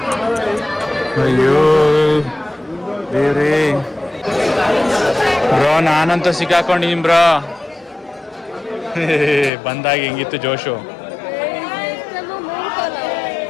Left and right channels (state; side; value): drops out; right; at 9.5 s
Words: ಅಯ್ಯೋ ದೇವ್ರೇ ಬ್ರೋ, ನಾನಂತೂ ಸಿಕ್ಕಾಕೊಂಡಿದ್ದೀನಿ ಬ್ರೋ. ಬಂದಾಗ ಹೆಂಗಿತ್ತು ಜೋಶು.